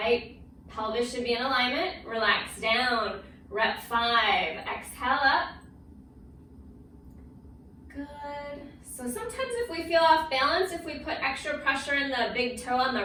Pelvis should be in alignment. Relax down. Rep 5. Exhale up. Good. So sometimes if we feel off balance, if we put extra pressure in the big toe on the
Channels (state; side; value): identical; both; correlation 1.00